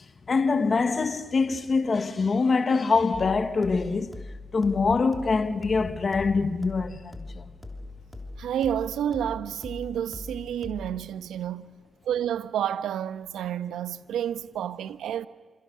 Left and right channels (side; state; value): both; normal; correlation 0.83